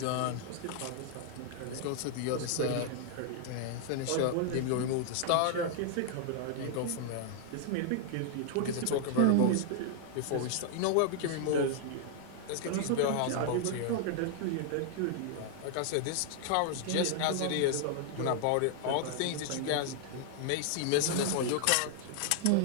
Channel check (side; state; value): both; different; correlation 0.00